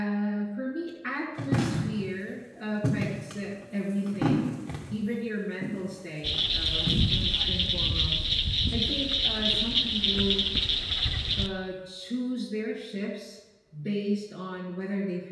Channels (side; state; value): both; identical; correlation 1.00